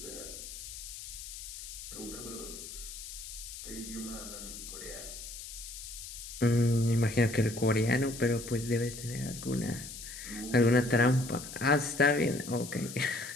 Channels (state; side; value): noise; left; hiss, 11 dB below the sound